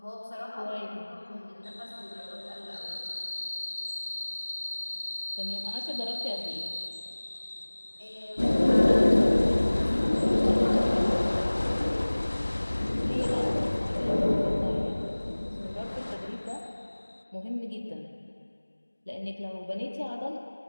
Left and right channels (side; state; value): both; inverted; correlation -1.00